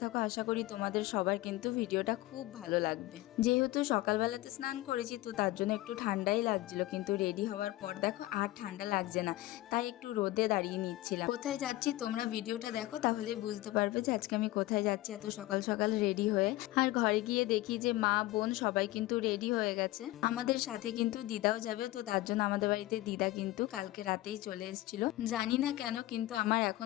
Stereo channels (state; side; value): quieter; right; 17.5 dB